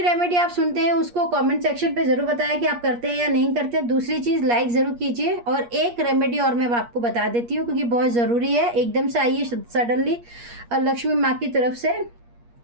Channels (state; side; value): late; left; 8.4 ms